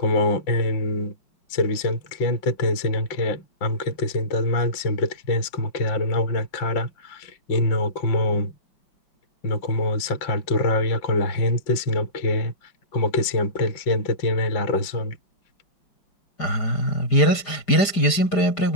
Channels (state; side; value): late; right; 5.0 ms